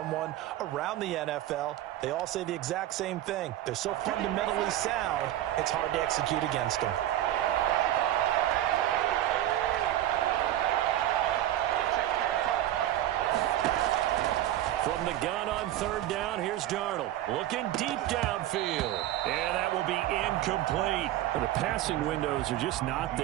around the NFL, they all say the exact same thing. They're so fundamentally sound, it's hard to execute against them. From the gun on third down, here's Darnold. Looking deep downfield. And that will be incomplete. The passing windows are just not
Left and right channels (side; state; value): left; quieter; 13.4 dB